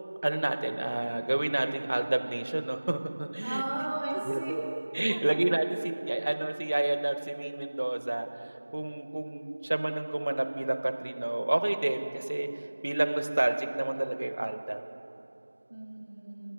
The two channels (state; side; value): inverted; both; correlation -1.00